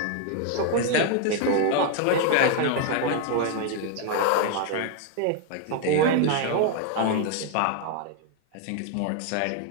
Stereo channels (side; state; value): both; different; correlation 0.00